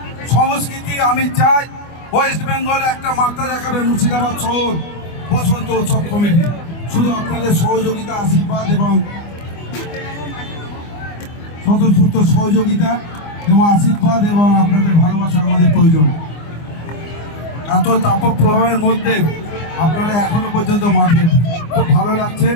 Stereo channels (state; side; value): late; right; 24 ms